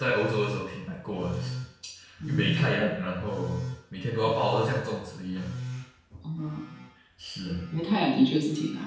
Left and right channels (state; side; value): identical; both; correlation 1.00